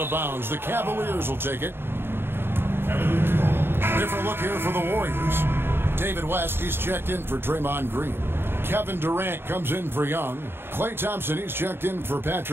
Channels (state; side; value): late; left; 0.11 ms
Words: of bounds. The Cavaliers will take it. Different look here for the Warriors. David West, he's checked in for Draymond Green. Kevin Durant comes in for Young. Klay Thompson, he's checked in for